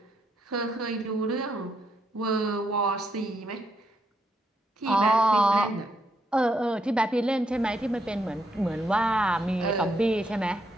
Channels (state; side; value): normal; both; correlation 0.77